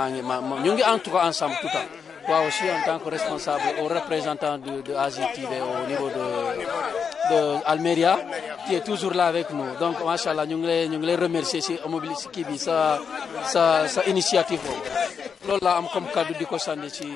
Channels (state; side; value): quieter; right; 6.4 dB